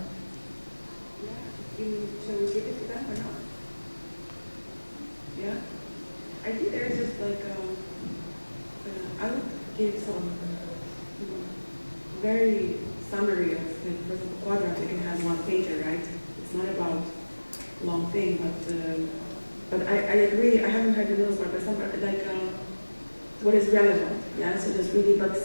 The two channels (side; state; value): both; inverted; correlation -1.00